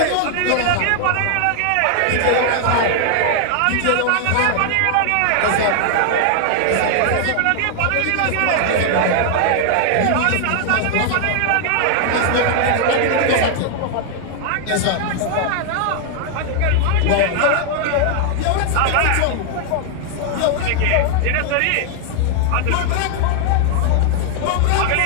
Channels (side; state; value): both; different; correlation 0.00